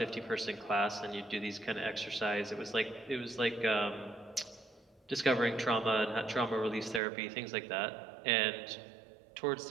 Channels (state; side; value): drops out; left; at 7.0 s